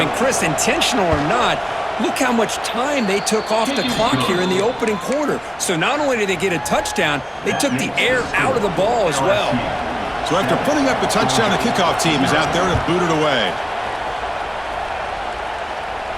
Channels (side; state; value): both; identical; correlation 1.00